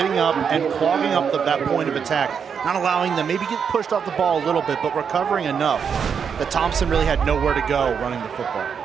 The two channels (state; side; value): quieter; left; 6.9 dB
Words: up and clogging up that point of attack. Not allowing them maybe get pushed off the ball a little bit, but recovering enough that Thompson really had nowhere to go running the football.